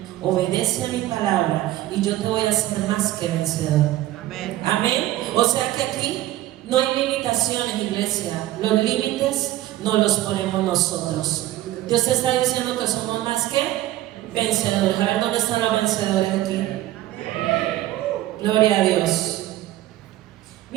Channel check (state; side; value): quieter; left; 15.0 dB